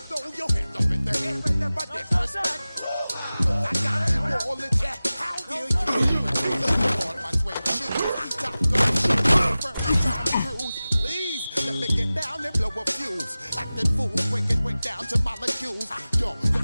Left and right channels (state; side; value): inverted; both; correlation -0.97